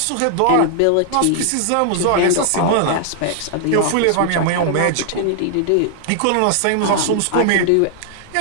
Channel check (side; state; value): both; different; correlation 0.00